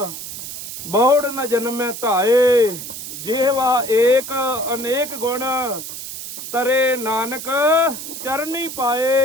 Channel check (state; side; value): noise; right; hiss, 9 dB below the sound